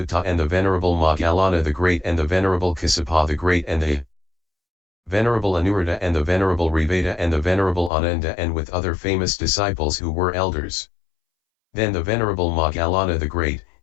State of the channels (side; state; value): right; drops out; at 7.9 s